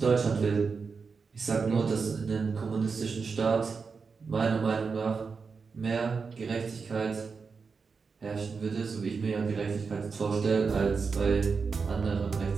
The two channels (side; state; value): left; quieter; 5.1 dB